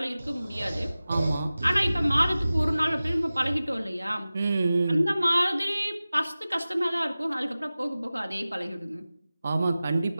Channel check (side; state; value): both; inverted; correlation -0.97